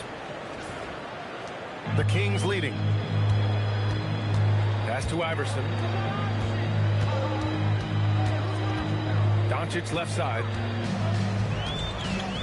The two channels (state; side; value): identical; both; correlation 1.00